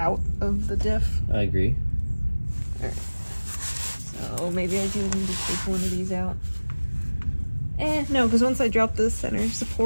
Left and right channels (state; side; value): inverted; both; correlation -1.00